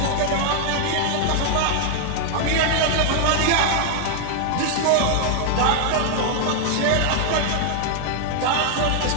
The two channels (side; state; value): both; different; correlation 0.00